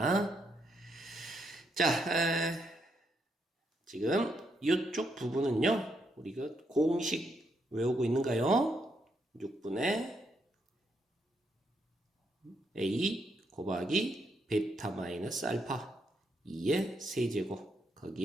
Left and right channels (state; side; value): normal; both; correlation 0.78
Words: 자, 지금 이쪽 부분은요, 우리가 공식 외우고 있는가요? 6분의 A 곱하기 베타 마이너스 알파 2의 세제곱,